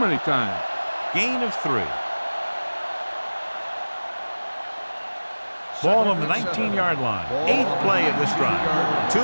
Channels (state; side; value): inverted; both; correlation -1.00